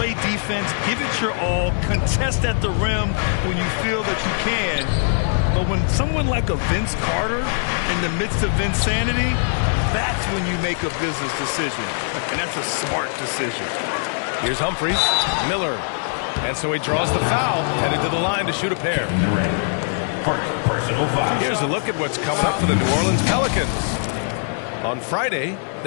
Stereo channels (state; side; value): silent; right; digital silence